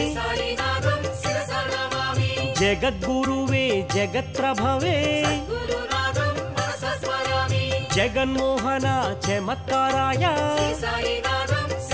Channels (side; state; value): both; identical; correlation 1.00